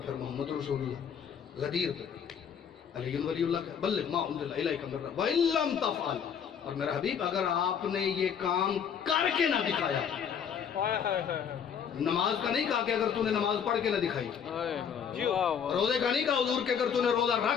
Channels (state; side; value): quieter; right; 7.6 dB